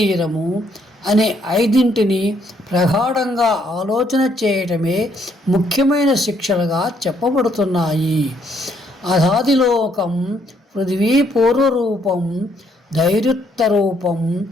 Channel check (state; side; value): normal; both; correlation 0.70